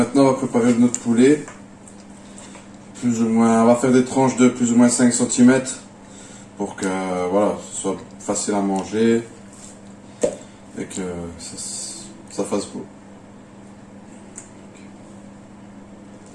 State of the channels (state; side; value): identical; both; correlation 1.00